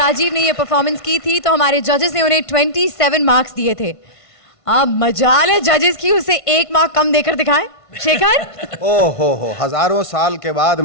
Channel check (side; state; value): right; late; 1.5 ms